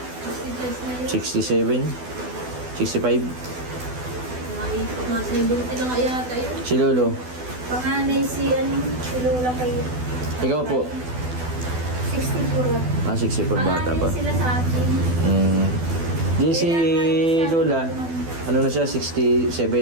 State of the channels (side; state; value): left; late; 12 ms